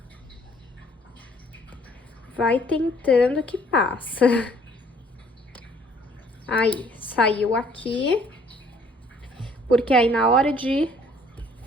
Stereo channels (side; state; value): both; normal; correlation 0.60